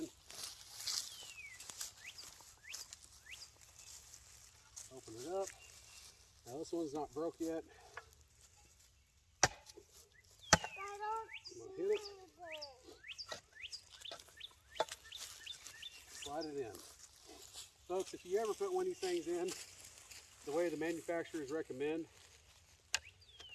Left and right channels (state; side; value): identical; both; correlation 1.00